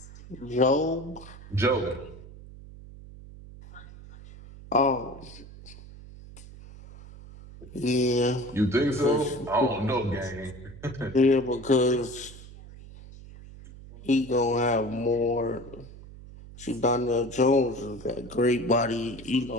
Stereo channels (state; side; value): noise; right; hum, 17 dB below the sound